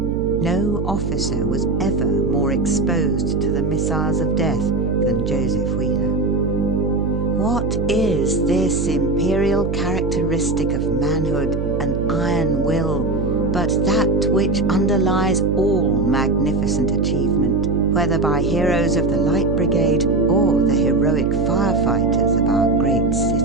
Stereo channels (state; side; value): noise; right; hum, 3 dB below the sound